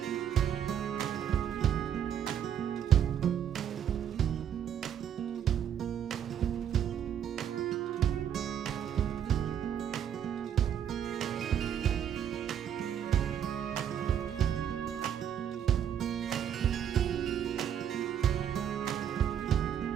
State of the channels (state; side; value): quieter; left; 9.2 dB